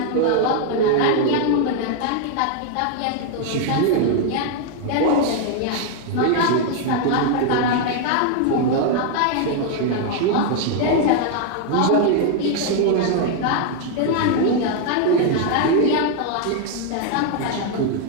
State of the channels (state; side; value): different; both; correlation 0.00